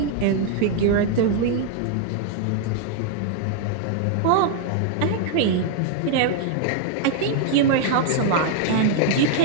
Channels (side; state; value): both; different; correlation 0.00